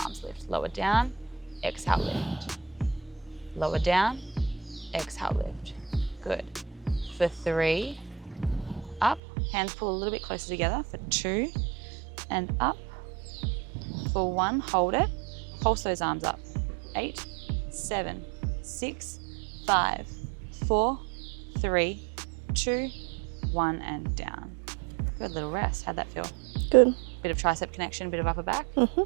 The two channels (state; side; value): drops out; left; at 9.2 s